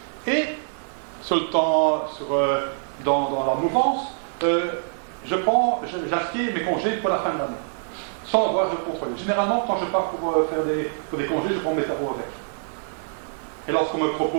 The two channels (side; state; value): left; silent; digital silence